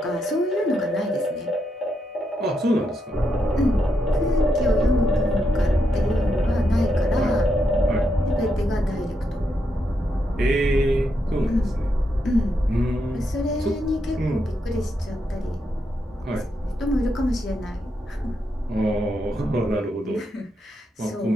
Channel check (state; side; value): normal; both; correlation 0.82